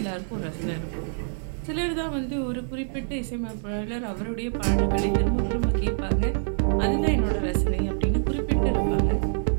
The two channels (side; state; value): left; silent; 61 dB below the other